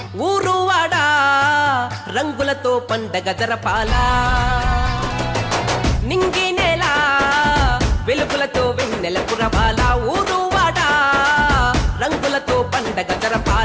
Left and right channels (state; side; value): identical; both; correlation 1.00